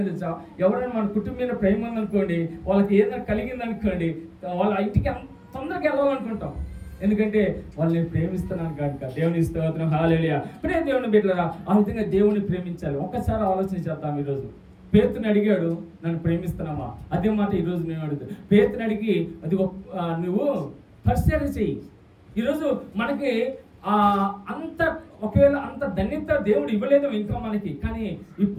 తెలుసా? ఎవరైనా మన కుటుంబం మీద ప్రేమ ఉందనుకోండి, వాళ్ళకి ఏదైనా కలిగిందనుకోండి, వాళ్ళ ఇంటికి తొందరగా వెళ్ళాలనుకుంటాం. ఎందుకంటే వాళ్ళని ప్రేమిస్తున్నాను కనుక. దేవుని స్తోత్రం. హల్లెలూయా. ప్రేమ దేవుని బిడ్డలారా, ఆ విధంగా దేవుని ప్రేమించాలి. ఒక్కసారి ఆలోచన చేద్దాం. ఈరోజు పేతుని అడిగాడు, నన్ను ప్రేమిస్తున్నావా? అదే మాట ఈరోజు నేను అడుగుతాను. పేతుని అడిగి అది నువ్వు పరిశీలన చెయ్యి. ఈరోజు మనకి ఒకవేళ అంత ధన్యత దేవుడు ఇవ్వలేదు ఇంకా మనకి, కానీ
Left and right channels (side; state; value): both; identical; correlation 1.00